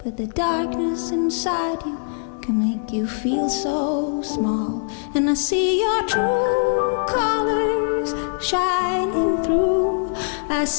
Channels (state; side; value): silent; right; digital silence